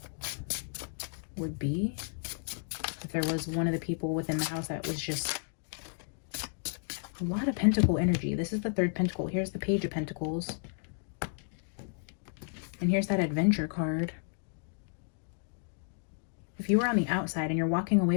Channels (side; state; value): right; silent; digital silence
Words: would be. If there was one of the people within the house that was just a lot of pentacle energy. This is the third pentacle. Here's the page of pentacles. And here's that adventure card. If you were on the outside and you're walking